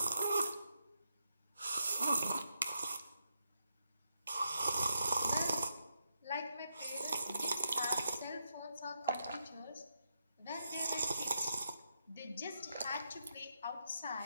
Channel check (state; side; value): inverted; both; correlation -0.82